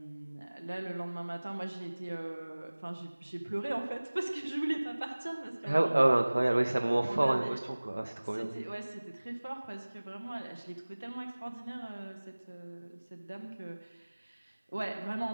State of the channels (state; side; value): inverted; both; correlation -1.00